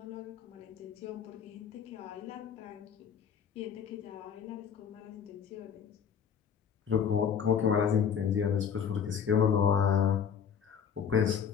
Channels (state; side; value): quieter; right; 7.4 dB